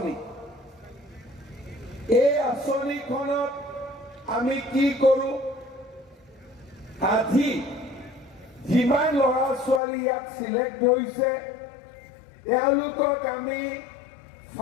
এই আঁচনিখনত আমি কি কৰোঁ, আজি যিমান ল'ৰা ছোৱালী ইয়াত চিলেক্ট হৈছে তেওঁলোকক আমি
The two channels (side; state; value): right; drops out; at 9.8 s